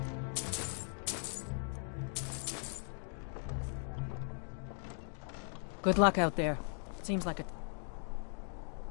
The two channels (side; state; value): right; silent; 52 dB below the other